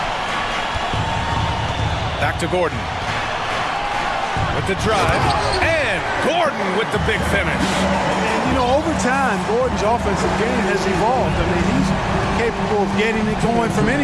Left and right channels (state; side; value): identical; both; correlation 1.00